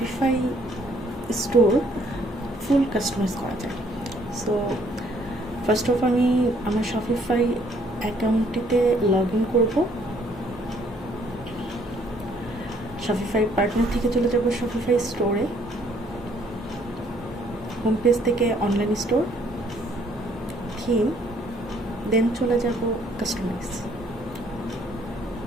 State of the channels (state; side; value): normal; both; correlation 0.64